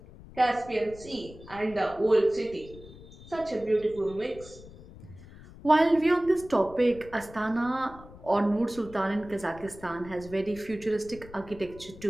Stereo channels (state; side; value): noise; left; rumble, 18 dB below the sound